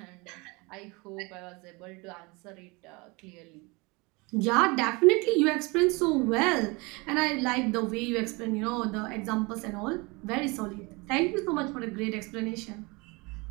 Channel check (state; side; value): quieter; left; 26.5 dB